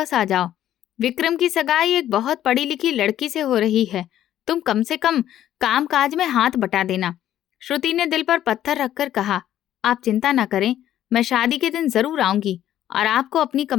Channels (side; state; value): right; quieter; 11.9 dB